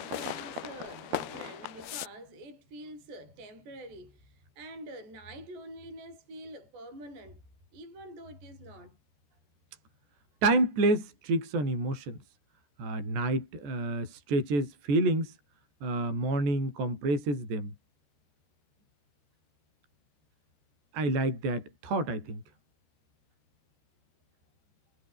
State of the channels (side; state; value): left; late; 13 ms